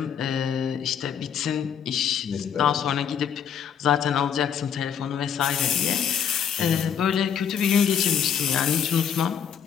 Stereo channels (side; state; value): right; quieter; 8.0 dB